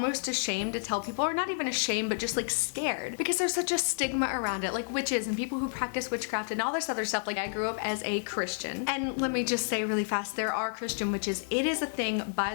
ashamed to tell people, or not even ashamed, but just like scared, because there's such a stigma around it, like witches and people who practice witchcraft and all this other stuff. Like I grew up as a Christian, and let me just say really fast, there are Christian witches. It is a thing, by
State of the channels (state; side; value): silent; right; digital silence